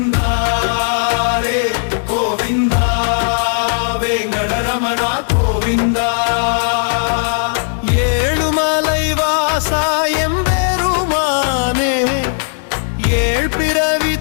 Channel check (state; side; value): silent; right; 69 dB below the other